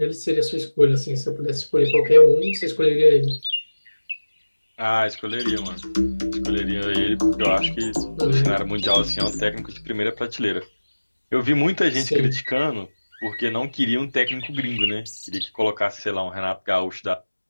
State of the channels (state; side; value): inverted; both; correlation -1.00